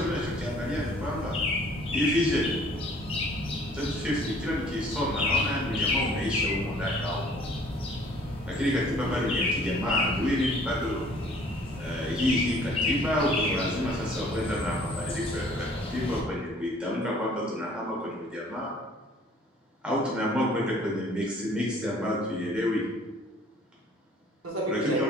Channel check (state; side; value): normal; both; correlation 0.55